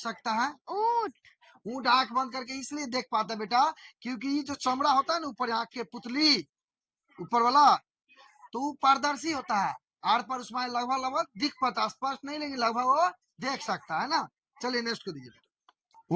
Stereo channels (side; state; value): both; identical; correlation 1.00